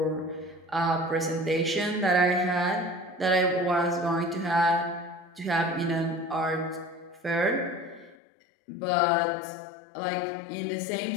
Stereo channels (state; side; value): drops out; right; at 8.2 s